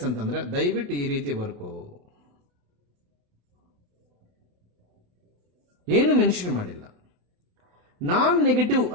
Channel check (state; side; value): late; left; 28 ms